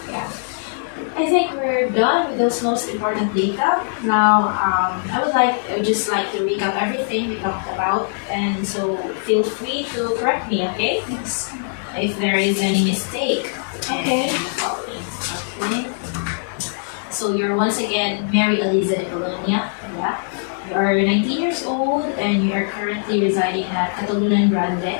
yeah, I think we're done with those most important data. Now, I would just like to recap everything we talked about, and so feel free to correct me, okay? Yes. If there is any mistake. Okay. in the following. Okay. So you're once again Mary Eliza de Colonia. Yeah. You are 19 years old and you are currently residing at Catalonia Grande.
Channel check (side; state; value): right; silent; digital silence